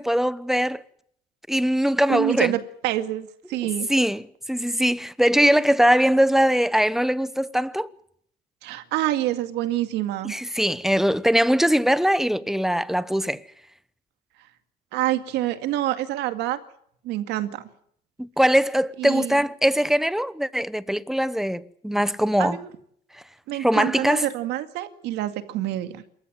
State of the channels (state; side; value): normal; both; correlation 0.85